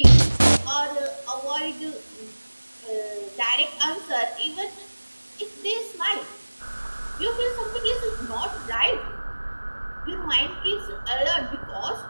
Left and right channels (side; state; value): both; inverted; correlation -1.00